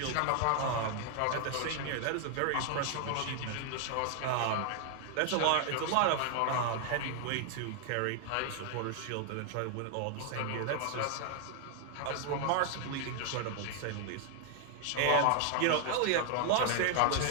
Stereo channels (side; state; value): both; different; correlation 0.00